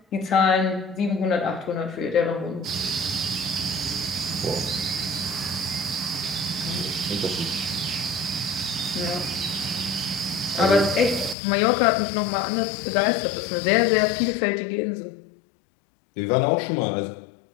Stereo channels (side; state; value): right; drops out; at 11.4 s